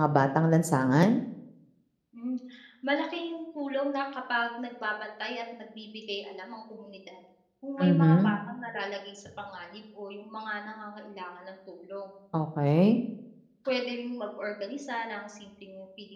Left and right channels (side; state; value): both; identical; correlation 1.00